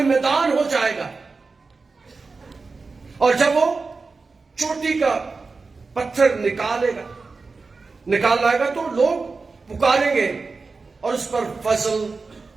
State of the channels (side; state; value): left; quieter; 4.2 dB